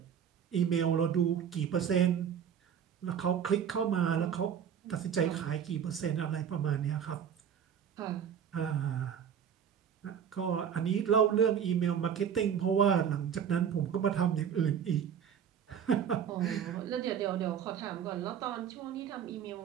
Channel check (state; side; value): quieter; left; 8.2 dB